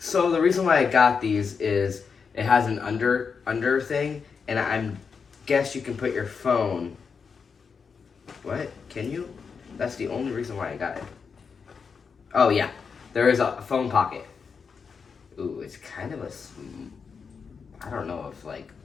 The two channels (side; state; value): right; quieter; 5.7 dB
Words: reason why I got these is it has an under thing, and I guess you can put your phone. What? Can you? That's the only reason why I got it. Oh yeah, there is a phone pocket. Ooh, it's kind of I don't know if